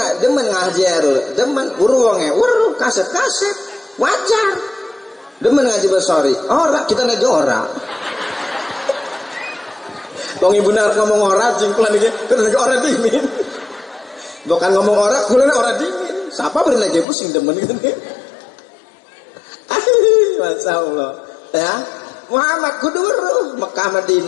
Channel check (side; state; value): right; drops out; at 17.1 s